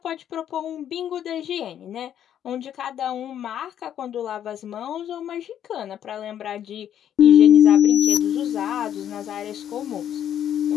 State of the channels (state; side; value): quieter; right; 10.1 dB